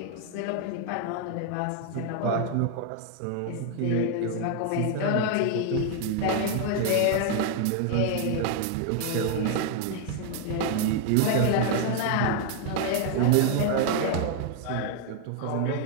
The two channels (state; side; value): different; both; correlation 0.00